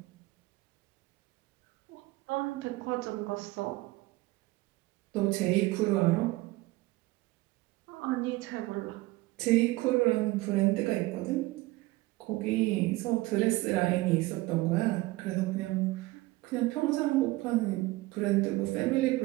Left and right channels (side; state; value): left; quieter; 20.0 dB